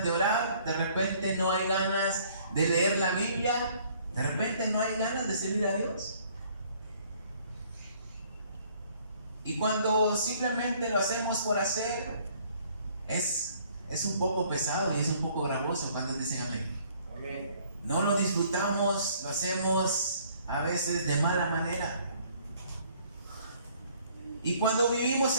de orar, de repente no hay ganas de leer la Biblia, de repente no hay ganas de servir a Dios. Y cuando simplemente lo hacemos por hacer, es un poco pesado y es un poco gravoso cuando dicen amén. Amén. No lo disfrutamos, lo hacemos a veces de mala manera. Y cuando vivimos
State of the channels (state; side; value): inverted; both; correlation -0.59